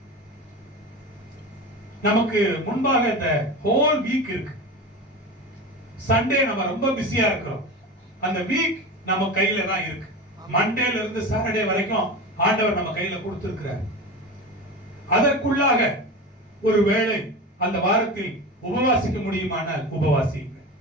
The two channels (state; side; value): normal; both; correlation 0.28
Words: நமக்கு முன்பாக இந்த ஹோல் வீக் இருக்கு. சண்டே நம்ம ரொம்ப பிஸியா இருக்கிறோம். அந்த வீக் நம்ம கையில தான் இருக்கு. மண்டேல இருந்து சாட்டர்டே வரைக்கும் ஆண்டவர் நம்ம கையில கொடுத்திருக்கிறார். அதற்குள்ளாக ஒரு வேளை அந்த வாரத்தில் உபவாசிக்க முடியுமானால் உபவாசிங்க.